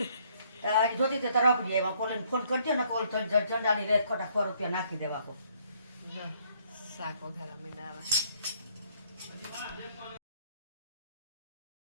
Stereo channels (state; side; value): inverted; both; correlation -0.65